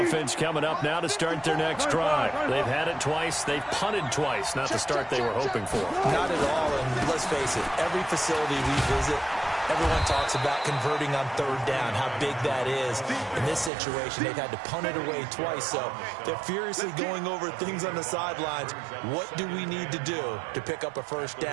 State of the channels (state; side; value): drops out; left; at 13.7 s